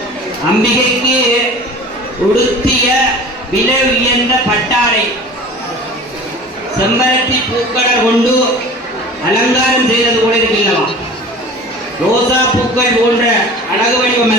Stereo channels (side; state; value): both; normal; correlation 0.40